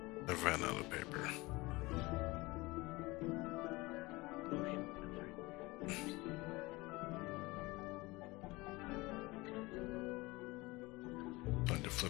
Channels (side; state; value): right; quieter; 22.4 dB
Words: I ran out of paper. Time to